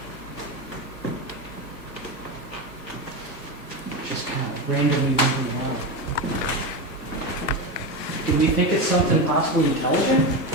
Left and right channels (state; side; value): normal; both; correlation 0.17